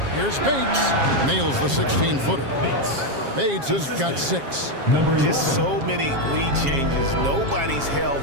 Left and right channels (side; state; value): left; late; 7.4 ms